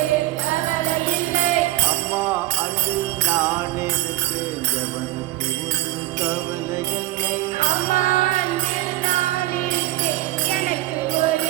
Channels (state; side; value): quieter; left; 17.0 dB